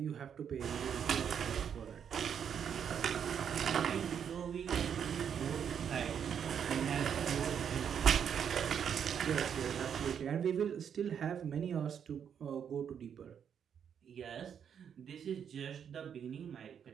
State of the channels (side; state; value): left; quieter; 8.0 dB